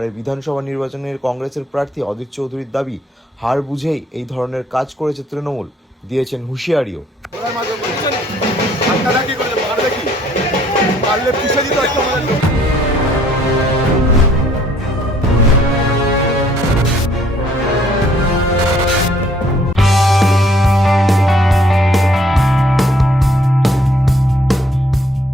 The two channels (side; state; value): both; normal; correlation 0.63